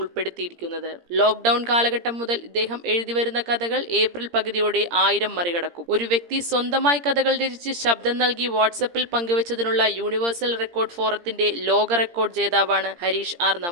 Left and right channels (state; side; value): late; left; 17 ms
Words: ലോക്ക്ഡൌൺ കാലഘട്ടം മുതൽ ഇദ്ദേഹം എഴുതിവരുന്ന കഥകൾ ഏപ്രിൽ പകുതിയോടെ 1000 മറികടക്കും. ഒരു വ്യക്തി സ്വന്തമായി കഥകൾ രചിച്ച് ശബ്ദം നൽകി വാട്സപ്പിൽ പങ്കുവച്ചതിനുള്ള യൂണിവേഴ്സൽ റെക്കോർഡ് ഫോറത്തിന്റെ ലോക റെക്കോർഡ് ജേതാവാണ് ഹരീഷ് ആർ